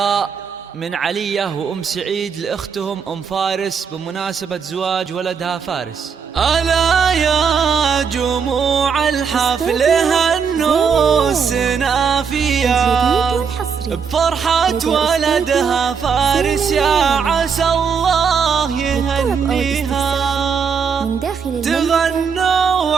من علية وأم سعيد لأختهم أم فارس بمناسبة زواج ولدها فارس. ألا يا جموع الحفل هنوا السنافية بفرحة ولدها فارس، يا عسى الله يهنيها. تغنوا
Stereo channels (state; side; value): quieter; left; 6.3 dB